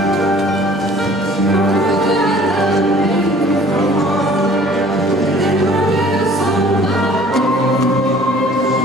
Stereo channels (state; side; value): normal; both; correlation 0.52